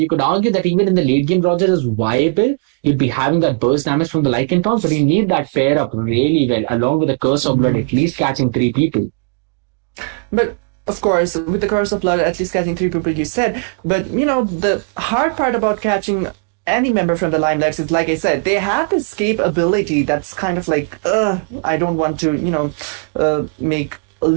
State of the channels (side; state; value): left; quieter; 35.4 dB